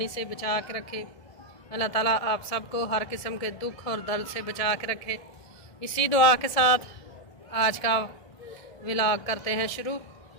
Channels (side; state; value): right; late; 1.7 ms